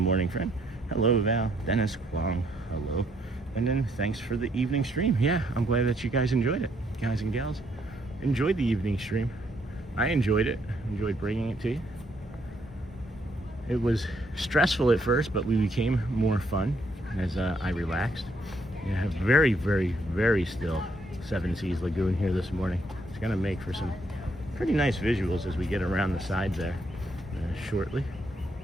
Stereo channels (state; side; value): normal; both; correlation 0.71